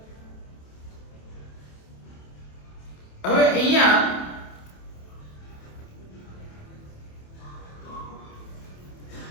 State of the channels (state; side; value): late; right; 27 ms